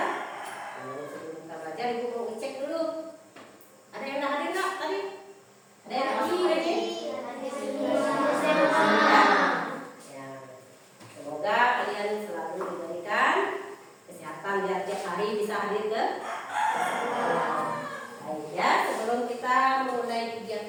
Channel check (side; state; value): both; identical; correlation 1.00